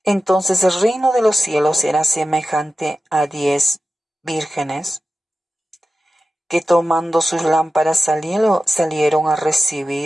Entonces el reino de los cielos será semejante a 10 vírgenes que, tomando sus lámparas, salieron a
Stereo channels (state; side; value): normal; both; correlation 0.94